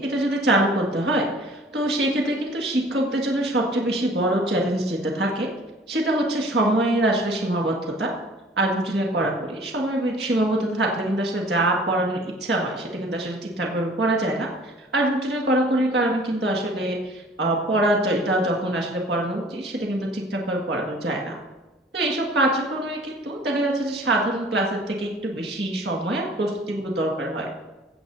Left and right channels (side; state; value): both; normal; correlation 0.50